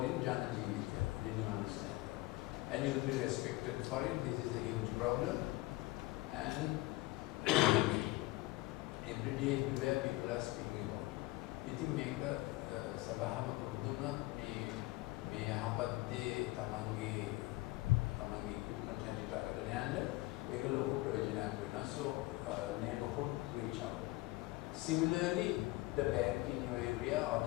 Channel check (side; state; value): right; quieter; 20.3 dB